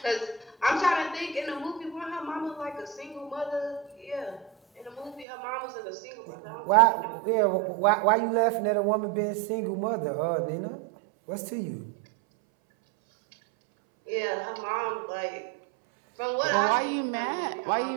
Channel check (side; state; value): left; drops out; at 5.2 s